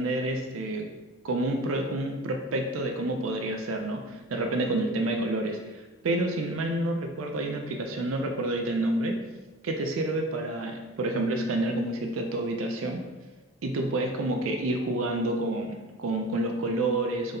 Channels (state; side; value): normal; both; correlation 0.38